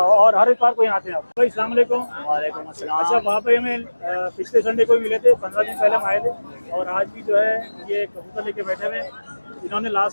हर इतवार को यहाँ आते हैं आप। भाई अस्सलाम वालेकुम। वालेकुम अस्सलाम। अच्छा, वहाँ पे हमें पिछले संडे को ही मिले थे, 15 दिन पहले हम आए थे और आज भी जो है ये कबूतर लेके बैठे हुए हैं। इन्होंने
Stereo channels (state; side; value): inverted; both; correlation -1.00